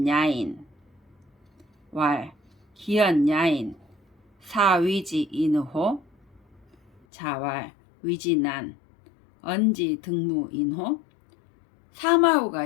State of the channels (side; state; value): right; drops out; at 7.0 s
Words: 왈 기연야인 사위지 인호 자왈 위지난 언지 등무 인호 사마우가